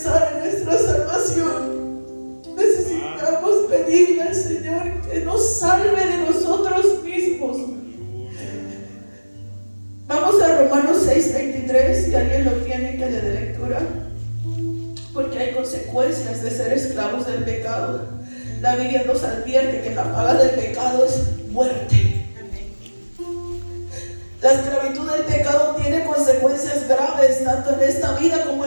en nuestra salvación. Necesitamos pedirle al Señor que nos salve de nosotros mismos. Vamos a Romanos 6:23, si alguien lo tiene, que le dé lectura. Porque hay consecuencias de ser esclavos del pecado. La Biblia nos advierte que la paga del pecado es muerte. La esclavitud del pecado tiene consecuencias graves, tanto en esta vida como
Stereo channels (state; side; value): inverted; both; correlation -1.00